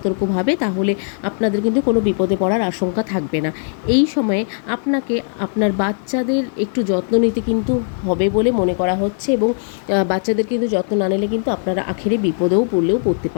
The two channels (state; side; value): silent; right; 56 dB below the other